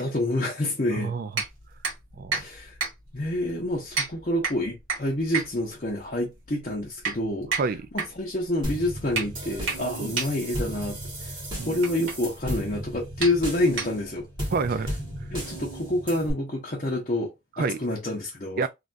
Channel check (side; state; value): both; normal; correlation 0.44